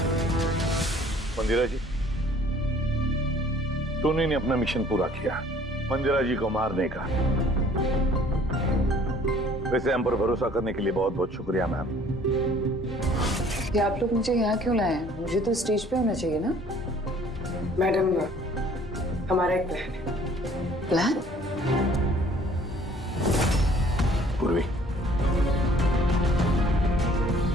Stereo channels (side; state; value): both; normal; correlation 0.55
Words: मंदिरा जी, टोनी ने अपना मिशन पूरा किया, मंदिरा जी को मारने का। वैसे हम पर भरोसा करने के लिए बहुत बहुत शुक्रिया मैम। कि आप लोग मुझे यहाँ क्यों लाए हैं? मुझे तो स्टेज पे होना चाहिए ना। मैडम, हमारा एक प्लान है। प्लान? पूर्वी,